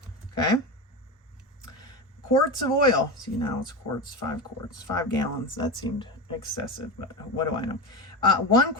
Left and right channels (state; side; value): normal; both; correlation 0.20